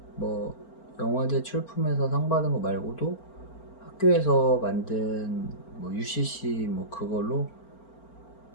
뭐 영화제 출품해서 상 받은 거 말고도 학교에서 만든 뭐 UCC 뭐 그걸로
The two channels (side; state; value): right; late; 4.4 ms